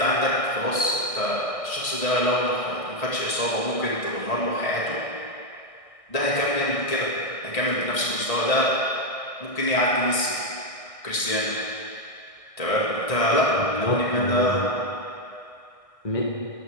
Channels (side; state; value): right; late; 1.6 ms